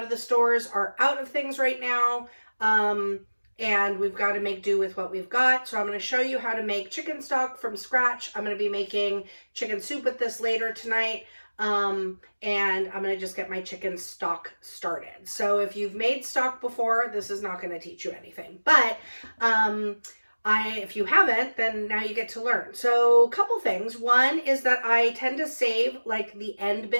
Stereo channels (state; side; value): inverted; both; correlation -1.00